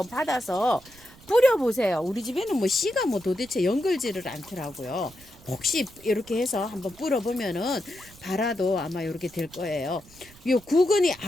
받아서 뿌려보세요. 우리 집에는 뭐 씨가 뭐 도대체 연글지를 않더라고요. 혹시 이렇게 해서 한번 뿌려보면은 발아도 아마 이렇게 될 거예요. 요 구근이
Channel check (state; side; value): noise; right; rumble, 23 dB below the sound